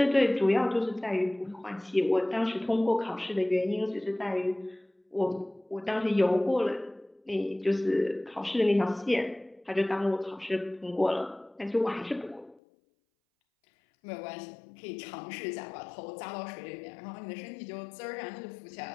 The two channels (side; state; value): right; drops out; at 12.6 s